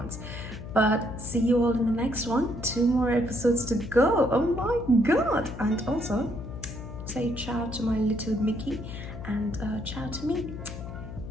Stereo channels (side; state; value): left; noise; hum, 10 dB below the sound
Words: But see you all in the next one. 2 more episodes to go. Oh my god. And also say ciao to my little Mickey and ciao to me.